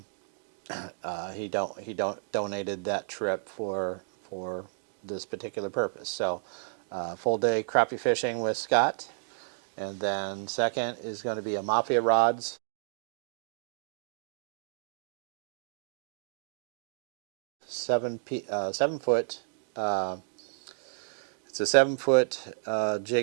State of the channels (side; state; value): left; silent; digital silence